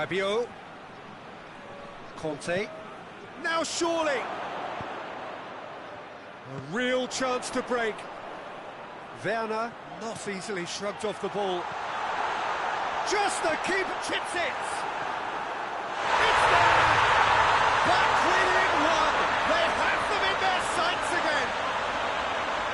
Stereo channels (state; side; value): identical; both; correlation 1.00